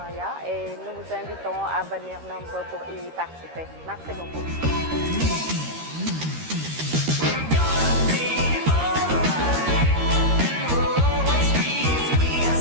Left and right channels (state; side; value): late; left; 13 ms